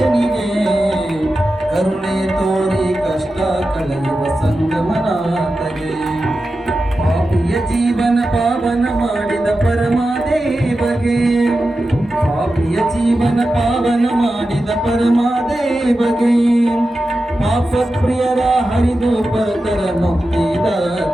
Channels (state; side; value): normal; both; correlation 0.92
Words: ಕರುಣೆ ತೋರಿ ಕಷ್ಟ ಜೀವನ ಪಾವನ ಮಾಡಿದ ಪರಮಾದೇವಗೆ, ಪಾಪಿಯ ಜೀವನ ಪಾವನ ಮಾಡಿದ ಪರಮಾದೇವಗೆ, ಪಾಪ ಪ್ರಿಯರ ಹರಿದು ಪರತರ